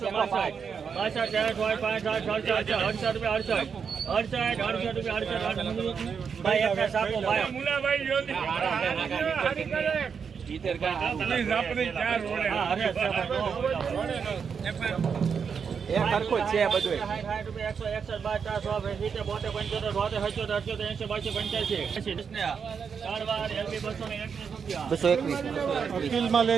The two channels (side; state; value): left; quieter; 6.4 dB